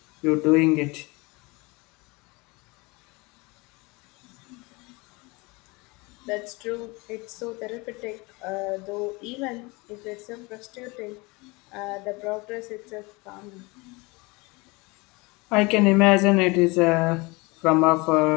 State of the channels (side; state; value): right; quieter; 25.7 dB